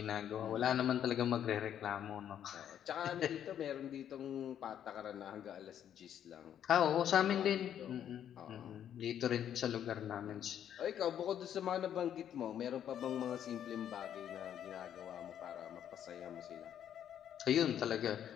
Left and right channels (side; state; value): right; quieter; 9.8 dB